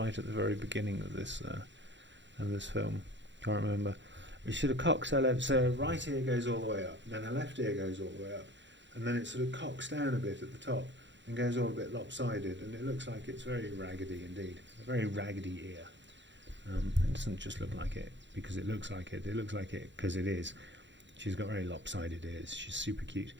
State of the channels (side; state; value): left; late; 0.53 ms